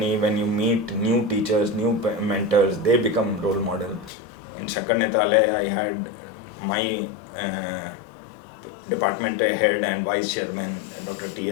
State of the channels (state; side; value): drops out; right; at 4.1 s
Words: when you meet new teachers, new mentors, they become role model. In Shakarnetale, I had my department head and vice chairman, Dr.